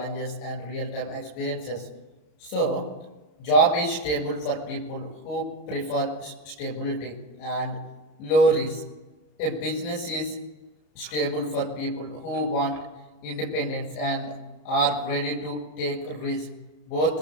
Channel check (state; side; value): late; right; 34 ms